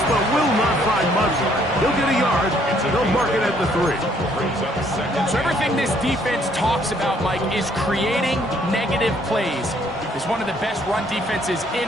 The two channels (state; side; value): normal; both; correlation 0.65